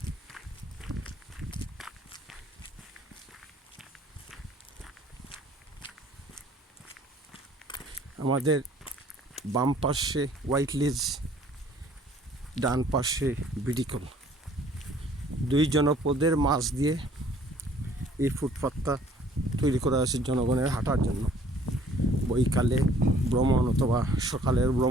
আমাদের বাম পাশে হোয়াইট লেজ, ডান পাশে বিডিকল, দুই জনপদের মাঝ দিয়ে এই ফুটপাথটা তৈরি করা হয়েছে জনগণের হাঁটার জন্য। বৈকালে ভ্রমণ অথবা সকালের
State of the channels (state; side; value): normal; both; correlation 0.57